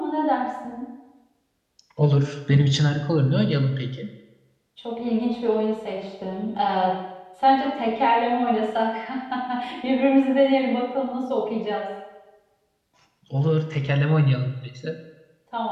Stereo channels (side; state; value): both; identical; correlation 1.00